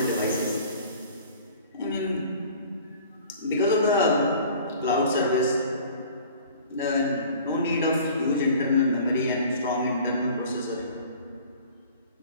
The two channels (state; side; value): inverted; both; correlation -0.46